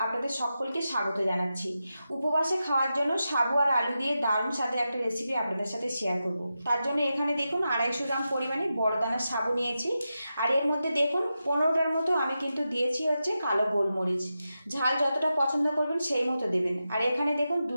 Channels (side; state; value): both; inverted; correlation -0.90